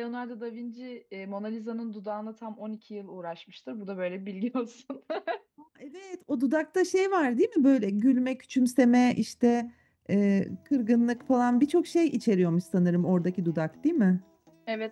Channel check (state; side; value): identical; both; correlation 1.00